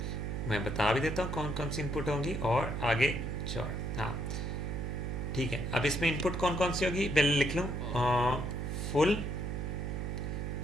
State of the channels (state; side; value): noise; right; hum, 2 dB below the sound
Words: मैं बता भी देता हूँ कौन कौन सी इनपुट होंगी और आगे चौड़। हाँ ठीक है, अब इसमें इनपुट कौन कौन सी होगी पहले लिख लूँ। Full